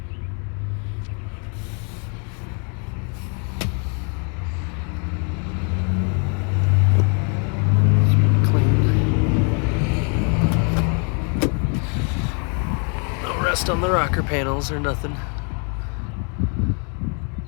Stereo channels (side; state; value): right; quieter; 39.5 dB